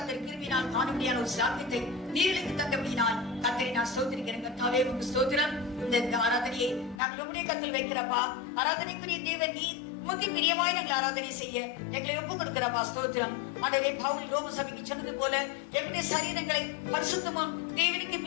கிருபினால் காணும்படியான ஒரு சாத்தியத்தை நீர்களுக்கு தந்தபடினால் கர்த்தரை நான் ஸ்தோத்திரிக்கிறேன் கர்த்தாவே, உமக்கு ஸ்தோத்திரம். இந்த ஆராதனையை நாங்கள் உம்முடைய கருத்தில் வைக்கிறப்பா. ஆராதனைக்குரிய தேவன் நீர், உமக்கு பிரியமாய் நாங்கள் ஆராதனை செய்ய எங்களை ஒப்பு கொடுக்கிறப்பா. ஸ்தோத்திரம். ஆண்டவரே, பவுல் ரோம சபைக்கு சொன்னது போல எங்களுடைய சரீரங்களை பரிசுத்தமும் தேவனுக்கு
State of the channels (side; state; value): right; drops out; at 7.0 s